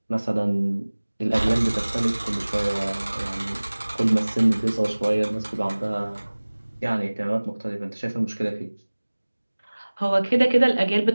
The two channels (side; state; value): both; inverted; correlation -1.00